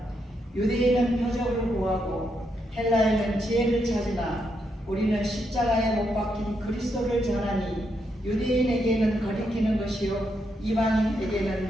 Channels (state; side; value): normal; both; correlation 0.80